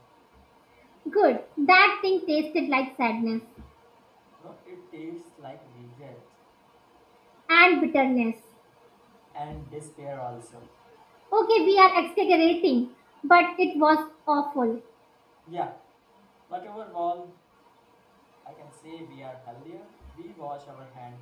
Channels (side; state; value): both; identical; correlation 1.00